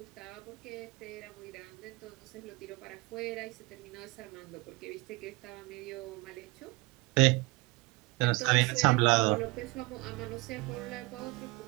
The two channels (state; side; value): quieter; left; 24.9 dB